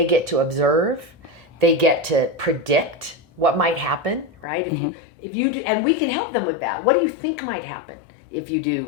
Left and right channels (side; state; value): right; drops out; at 4.5 s